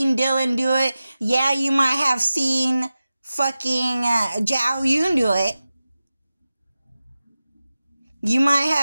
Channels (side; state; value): both; inverted; correlation -0.95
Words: Dylan do it. Yeah, you might have seen fucking Zhao Yun do it. You might